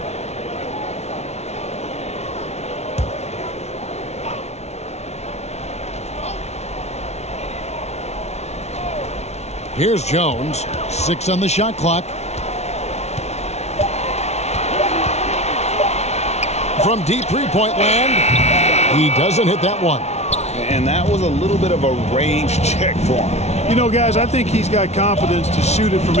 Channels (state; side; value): late; right; 0.31 ms